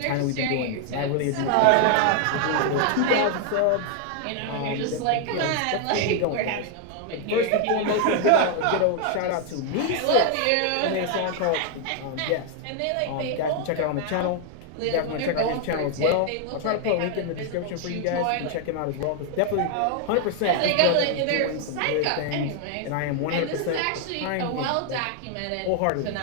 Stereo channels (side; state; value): both; different; correlation 0.00